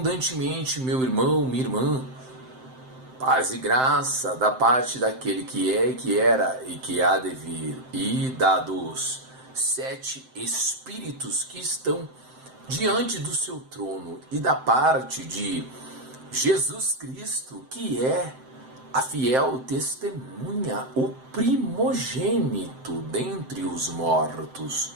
meu irmão, minha irmã. Paz e graça da parte daquele que é, que era e que há de vir, e dados 7 Espíritos que estão diante do seu trono, e da parte de Jesus Cristo, que é a fiel testemunha, o primogênito dentre os mortos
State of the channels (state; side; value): late; left; 7.7 ms